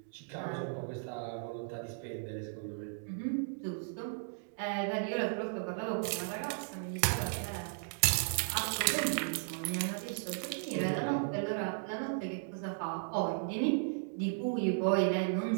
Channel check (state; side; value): silent; left; digital silence